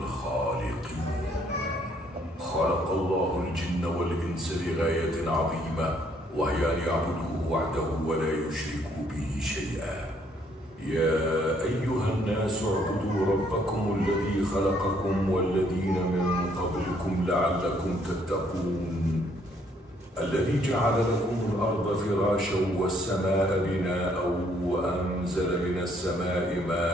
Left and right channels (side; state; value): both; normal; correlation 0.67